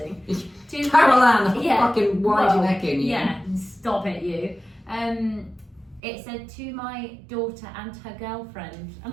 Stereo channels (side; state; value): left; drops out; at 6.0 s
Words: Caroline, yeah, fucking wind your neck in, you. Yeah, stop it, you. It said to my daughter and her girlfriend,